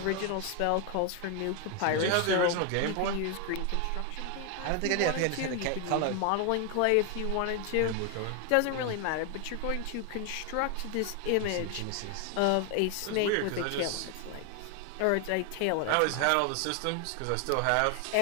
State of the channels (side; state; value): both; different; correlation 0.01